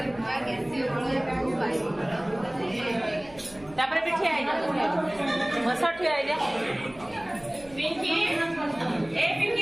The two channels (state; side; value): noise; right; hum, 23 dB below the sound